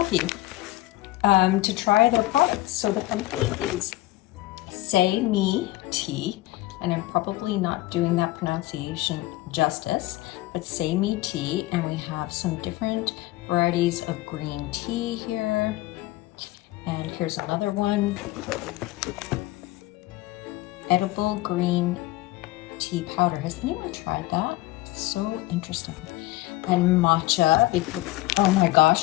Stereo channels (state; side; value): quieter; right; 17.7 dB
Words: to try their products. So the company is Sei Mee Tea, and I'm probably not doing that pronunciation justice, but Sei Mee Tea, and we have some different varieties of green tea here. And here's another one. Edible green tea powder. Has anyone tried that? It's so interesting. And matcha, because oh my